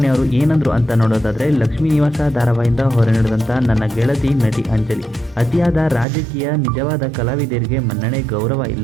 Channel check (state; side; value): drops out; left; at 6.1 s